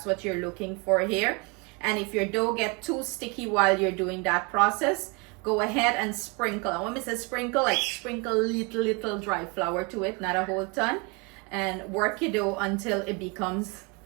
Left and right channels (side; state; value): left; quieter; 30.5 dB